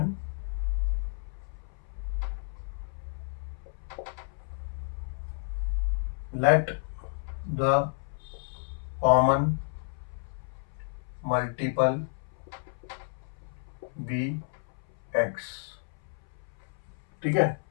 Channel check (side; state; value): right; silent; 57 dB below the other